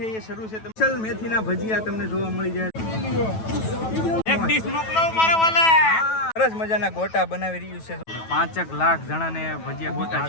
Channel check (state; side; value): late; right; 9.2 ms